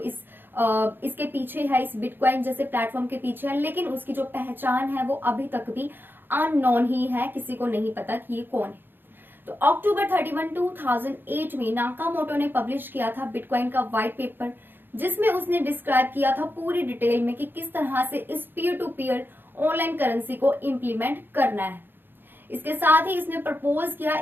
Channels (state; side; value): late; left; 0.098 ms